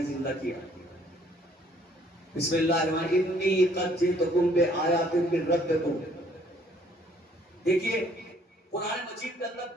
زندہ کیا؟ بسم اللہ الرحمن الرحیم انی قد جئتکم بآیات من ربکم. دیکھیے قرآن مجید کے اندر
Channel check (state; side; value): normal; both; correlation 0.62